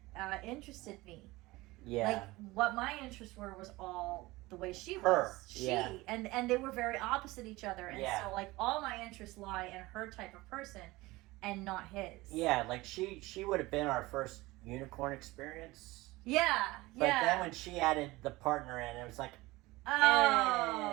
that interested me. Yeah. Like what my interests were was all the way she Her, was. She yeah. and they were very opposite each other. And Yeah. so like all my interests lie in her type of person and not his. Yeah, like she would have been our first unicorn experience. Yeah. But then when she added the partner in, it was like,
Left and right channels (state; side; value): quieter; left; 20.4 dB